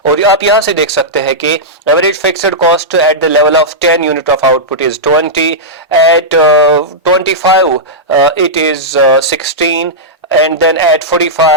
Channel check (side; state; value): both; normal; correlation -0.11